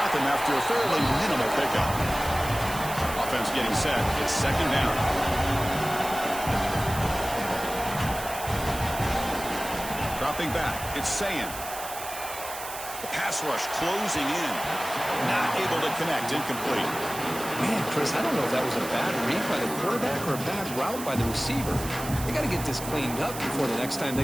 him after a fairly minimal pickup. Offense getting set. It's 2nd down. Dropping back. It's Sayin. The pass rush closing in. Not able to connect. Incomplete. Man, Chris, I don't know if that was a bad read by the quarterback or a bad route by the receiver. They got to get this cleaned up before the next time they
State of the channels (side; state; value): right; noise; hiss, 10 dB below the sound